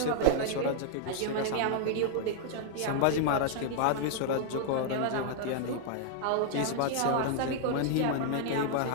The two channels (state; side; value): different; both; correlation -0.01